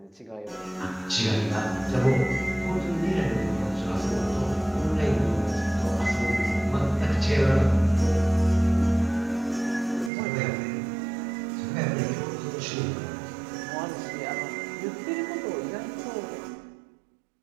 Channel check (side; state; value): left; drops out; at 10.1 s